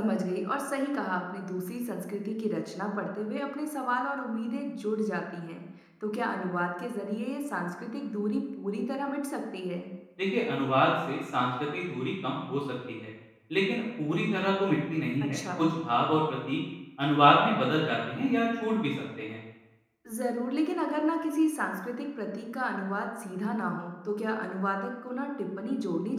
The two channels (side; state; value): both; identical; correlation 1.00